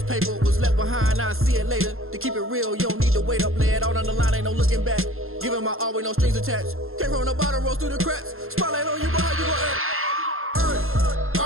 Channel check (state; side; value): late; left; 0.61 ms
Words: paper. Was left behind, I'll see it later. To keep it real, you don't need to wait up. Lay it out on the line, ain't no looking back. Giving my all with no strings attached. Came from the bottom, rose through the cracks. Spotlight on you, but how you gon' act? I